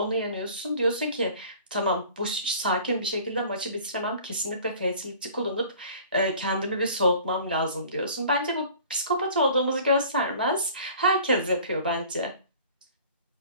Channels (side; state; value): both; inverted; correlation -0.48